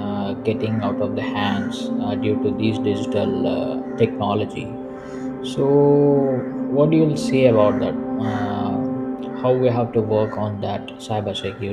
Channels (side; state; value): both; identical; correlation 1.00